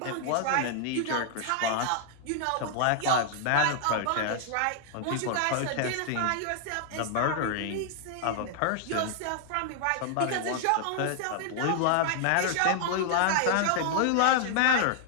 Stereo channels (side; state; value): both; different; correlation 0.00